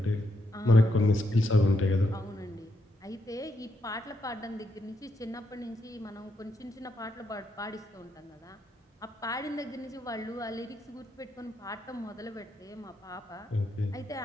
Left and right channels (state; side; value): normal; both; correlation 0.79